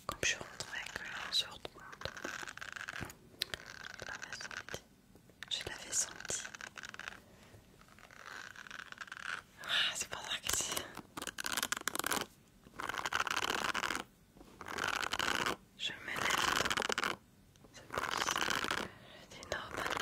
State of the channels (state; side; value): identical; both; correlation 1.00